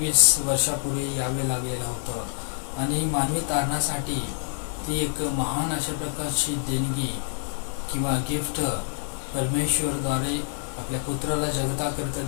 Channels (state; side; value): silent; right; 61 dB below the other